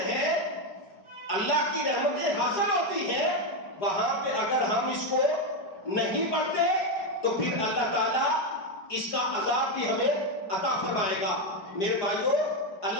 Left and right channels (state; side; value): late; right; 4.9 ms